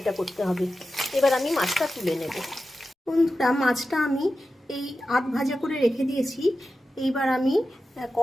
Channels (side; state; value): both; normal; correlation 0.92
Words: করতে হবে। এবার আমি মাছটা তুলে নেব। বন্ধুরা, মাছটা আমি এই আধ ভাজা করে রেখে দিয়েছি। এইবার আমি